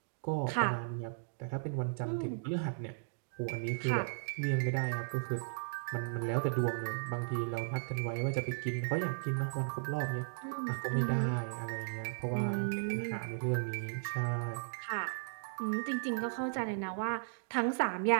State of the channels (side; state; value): left; silent; digital silence